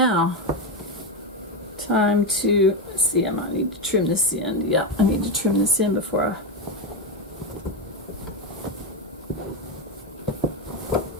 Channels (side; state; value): both; normal; correlation 0.11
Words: time to, let's see, I might need to trim this end. Yeah, I need to trim this in before